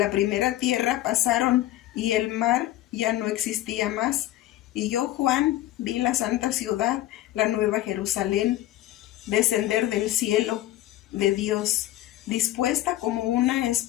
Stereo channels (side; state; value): right; quieter; 14.7 dB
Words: primera tierra pasaron, y el mar ya no existía más. Y yo, Juan, vi la santa ciudad, la nueva Jerusalén, descender del cielo de Dios, dispuesta como una